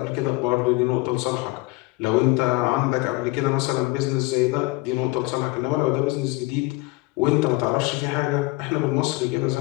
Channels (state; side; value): quieter; right; 22.5 dB